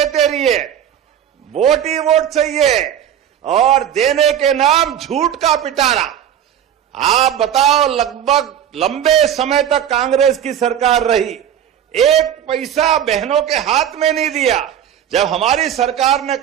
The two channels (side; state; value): left; quieter; 9.8 dB